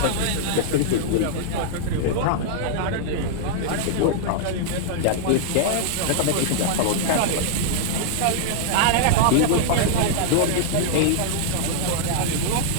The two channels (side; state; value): both; different; correlation -0.01